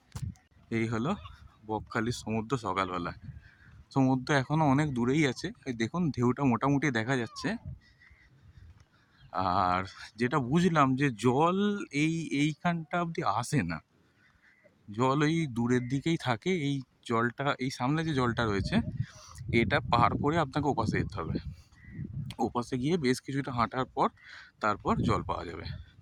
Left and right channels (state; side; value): identical; both; correlation 1.00